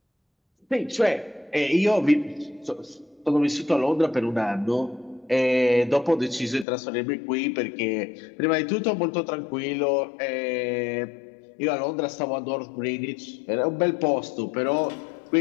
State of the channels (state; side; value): drops out; right; at 6.7 s